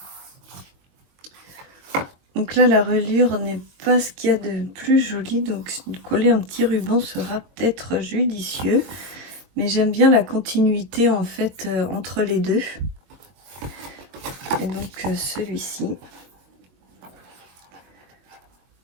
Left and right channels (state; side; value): late; left; 22 ms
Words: Donc là, la reliure n'est pas ce qu'il y a de plus joli, donc coller un petit ruban sera peut-être judicieux. Mais j'aime bien la continuité en fait entre les deux. Et donc celui-ci.